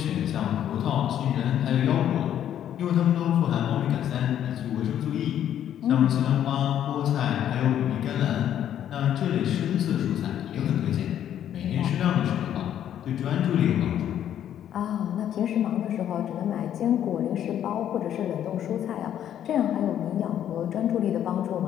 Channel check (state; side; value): quieter; right; 10.5 dB